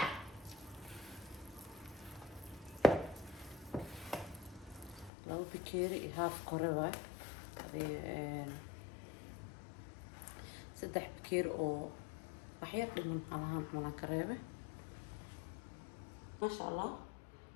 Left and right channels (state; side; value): drops out; right; at 5.1 s